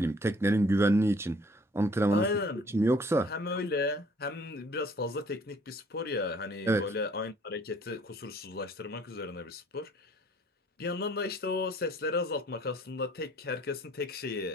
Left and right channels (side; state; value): both; normal; correlation 0.57